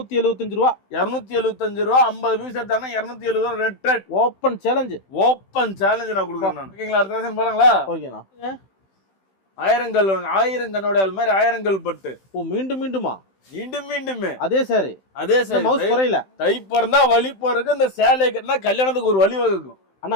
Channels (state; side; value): late; right; 16 ms